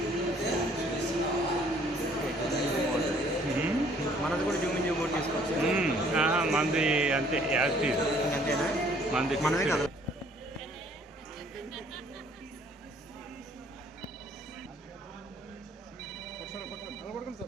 మనది కూడా జూమింగ్ బోర్డు తీసుకోవచ్చు. మంది అంతే యాక్టివ్ అంతేనా? మంది మనమే కదా.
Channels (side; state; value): both; normal; correlation 0.60